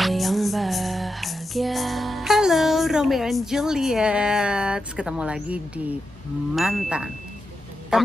yang bahagia. Halo Romeo and Juliet, ketemu lagi di Mantan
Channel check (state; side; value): normal; both; correlation 0.88